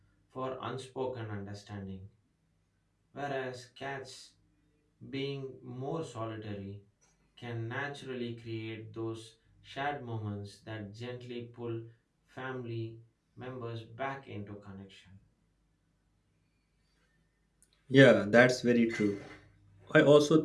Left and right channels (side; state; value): both; identical; correlation 1.00